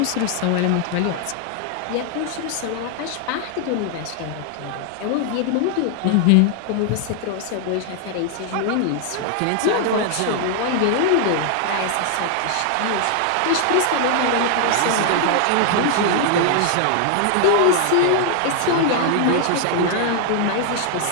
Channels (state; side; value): different; both; correlation 0.00